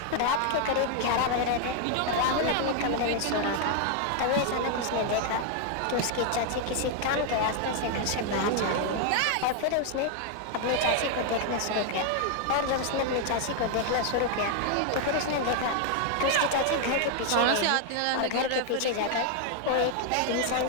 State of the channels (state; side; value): different; both; correlation 0.00